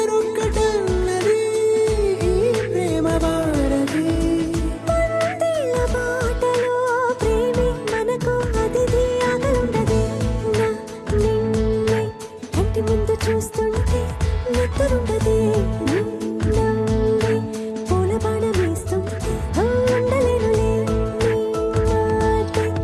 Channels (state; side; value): identical; both; correlation 1.00